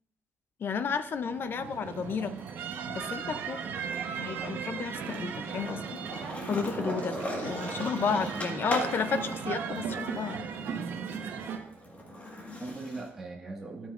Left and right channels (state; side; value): normal; both; correlation 0.59